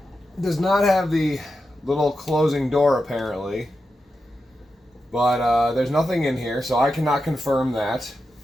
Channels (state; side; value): normal; both; correlation 0.89